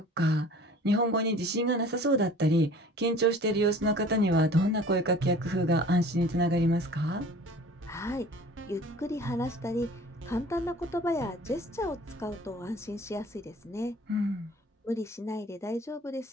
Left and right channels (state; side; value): normal; both; correlation 0.46